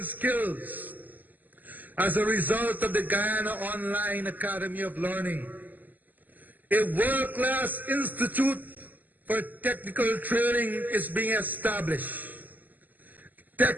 skills as a result of the Guyana Online Academy of Learning, a world-class institute for technical training is being established.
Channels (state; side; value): late; left; 0.085 ms